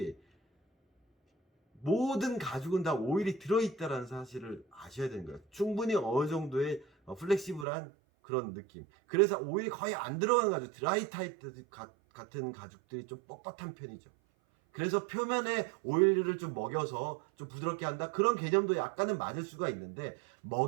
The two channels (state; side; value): drops out; left; at 7.7 s